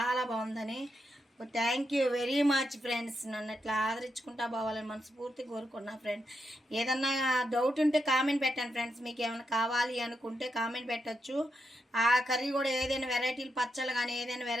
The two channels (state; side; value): normal; both; correlation 0.83